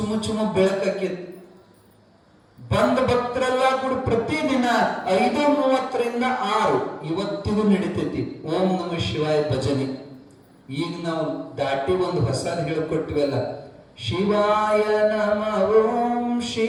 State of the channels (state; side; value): identical; both; correlation 1.00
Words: ಚುಮ ಬೆಳಕಾಕಿತ್ತು. ಬಂದ ಭಕ್ತರೆಲ್ಲ ಕೂಡ ಪ್ರತಿದಿನ 5:30ರಿಂದ 6 ಇವತ್ತಿಗೂ ನಡೀತೈತಿ ಓಂ ನಮಃ ಶಿವಾಯ ಭಜನೆ. ಈಗ ನಾವು ದಾಟಿ ಒಂದು ಹೊಸದು ಹೇಳಿಕೊಟ್ಟಿವಲ್ಲ, ಶಿವಾಯ ನಮಃ ಓಂ